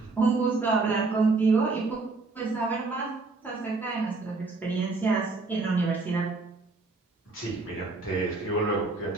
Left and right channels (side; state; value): left; quieter; 3.7 dB